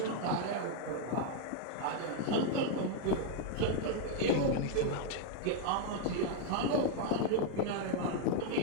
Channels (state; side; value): different; both; correlation 0.00